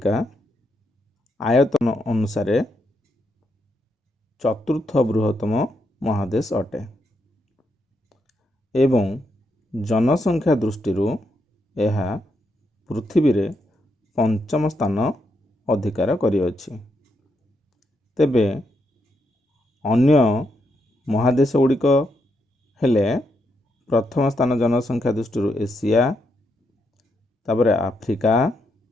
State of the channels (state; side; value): normal; both; correlation 0.80